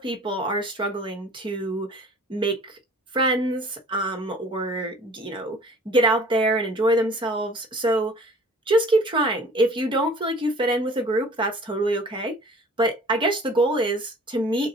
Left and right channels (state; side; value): normal; both; correlation 0.48